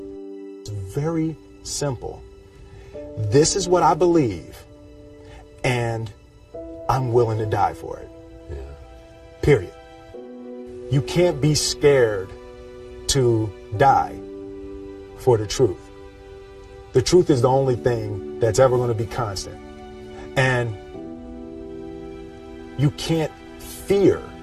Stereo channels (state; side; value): identical; both; correlation 1.00